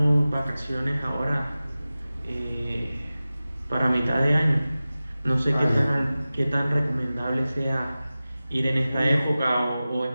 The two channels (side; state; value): both; inverted; correlation -0.96